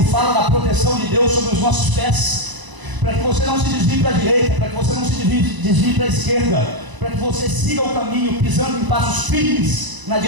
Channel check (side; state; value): left; late; 1.0 ms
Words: fala da proteção de Deus sobre os nossos pés, para que você não se desvie para a direita, para que você não se desvie para a esquerda, para que você siga o caminho, pisando em passos firmes na